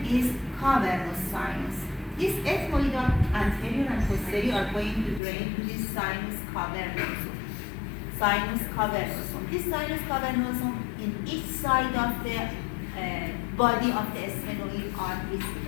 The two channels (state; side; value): drops out; right; at 5.2 s